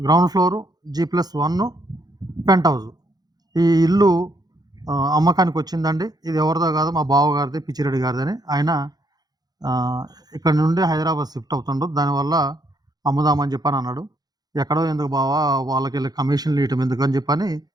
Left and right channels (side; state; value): left; late; 0.19 ms